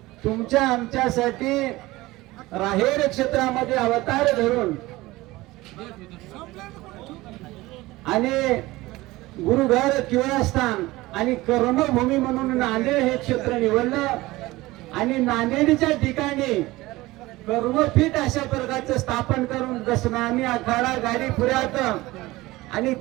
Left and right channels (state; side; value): quieter; left; 19.3 dB